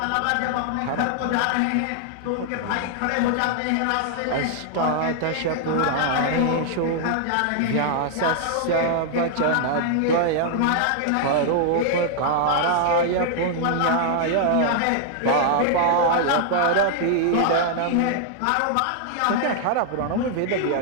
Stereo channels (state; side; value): different; both; correlation -0.01